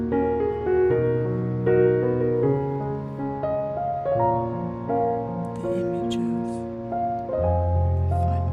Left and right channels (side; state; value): both; identical; correlation 1.00